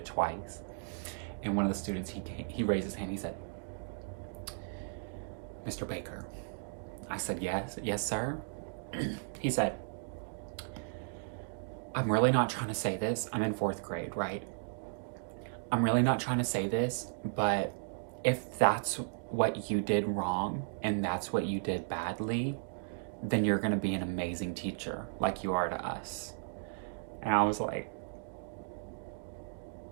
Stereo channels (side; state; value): left; silent; digital silence